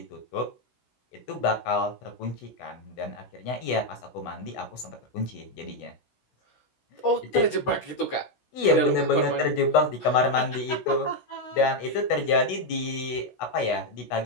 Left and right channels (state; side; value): late; right; 16 ms